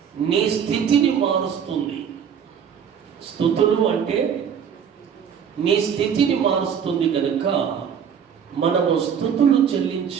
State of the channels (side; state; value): left; quieter; 7.8 dB